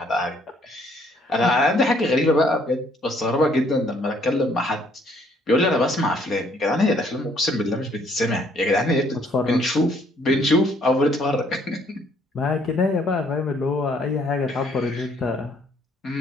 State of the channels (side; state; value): both; normal; correlation 0.65